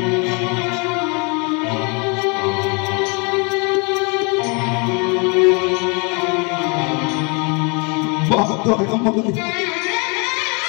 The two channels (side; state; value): right; quieter; 32.6 dB